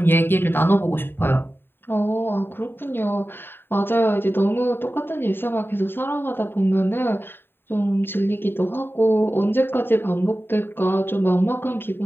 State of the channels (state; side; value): late; right; 0.10 ms